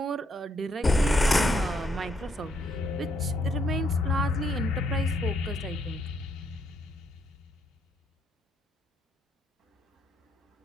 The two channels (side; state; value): both; normal; correlation 0.74